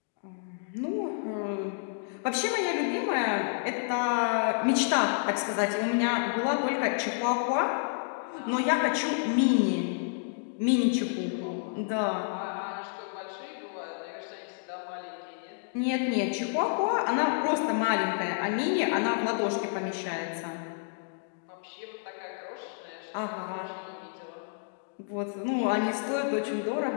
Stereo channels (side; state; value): right; silent; digital silence